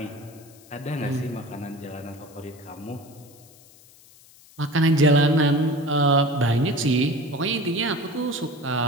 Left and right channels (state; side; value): noise; left; hiss, 25 dB below the sound